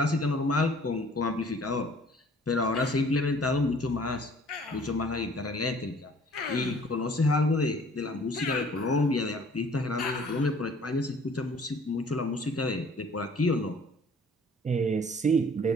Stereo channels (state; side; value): normal; both; correlation 0.54